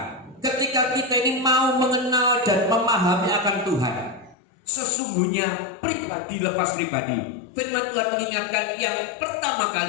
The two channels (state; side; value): drops out; right; at 4.4 s